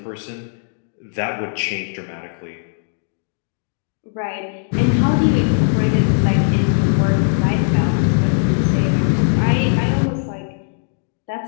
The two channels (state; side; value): silent; right; digital silence